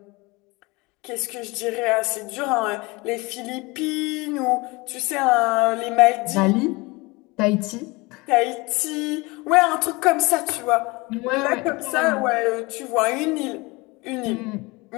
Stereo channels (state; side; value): quieter; right; 24.5 dB